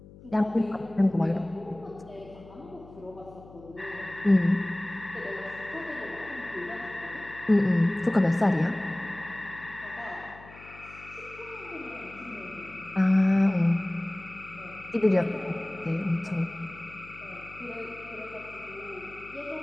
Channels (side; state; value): left; noise; hum, 19 dB below the sound